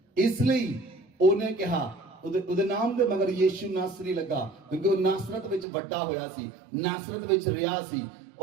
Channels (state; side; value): drops out; left; at 5.7 s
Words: ਇਸ ਲਈ ਉਹਨੇ ਕਿਹਾ, ਉਹਦੇ ਨਾਮ ਦੇ ਮਗਰ ਯੀਸ਼ੂ ਨਾਸਰੀ ਲੱਗਾ, ਕਿਉਂਕਿ ਉਹ ਨਾਸਰਤ ਵਿੱਚ ਵੱਡਾ ਹੋਇਆ ਸੀ, ਨਾਸਰਤ ਵਿੱਚ ਰਿਹਾ ਸੀ।